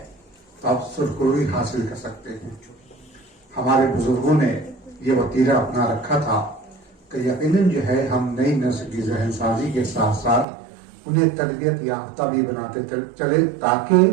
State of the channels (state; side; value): drops out; left; at 10.5 s